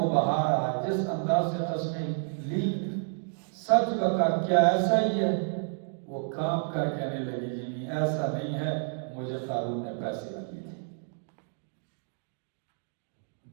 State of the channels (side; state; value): left; silent; 58 dB below the other